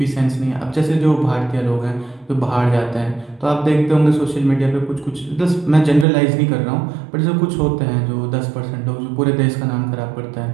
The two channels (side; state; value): left; drops out; at 6.1 s